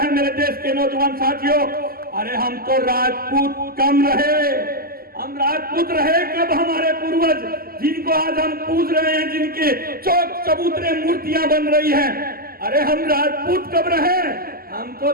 मेरे देश के नौजवान साथियों। अरे हम तो राजपूत कम रहे, हम राजपूत रहे कब हमारे पूर्वज जिनको आज हम पूज रहे हैं, जिनके चौक चबूतरे मूर्तियां बन रही हैं। अरे हम राजपूत कब रहे, हम तो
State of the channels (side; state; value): left; late; 0.43 ms